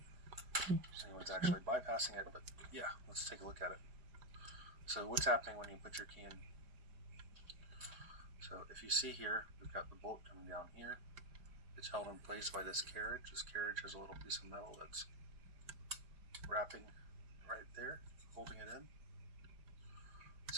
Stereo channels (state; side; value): late; left; 5.0 ms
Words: think anyone's actually bypassing it, but yeah, let's take a look at it. So what's happening when you put your key in? So if you see here, we've got the bolt coming down here. It's held in place by this carriage. This carriage has a little piece of metal that's wrapping right there, holding it in.